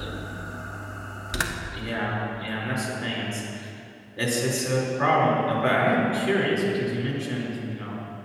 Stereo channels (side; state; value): both; identical; correlation 1.00